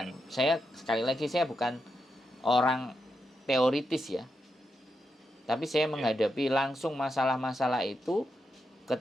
Sekali lagi saya bukan orang teoritis ya. Tapi saya menghadapi langsung masalah-masalah itu ke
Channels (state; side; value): normal; both; correlation 0.85